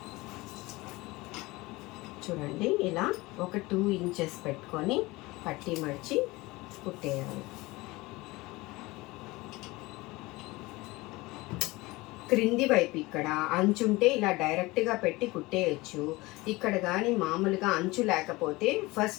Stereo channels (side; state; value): right; quieter; 21.6 dB